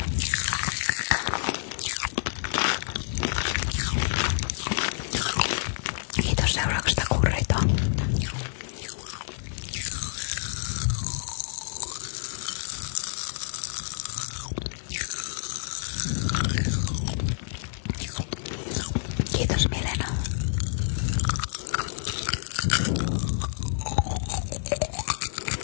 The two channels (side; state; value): right; silent; digital silence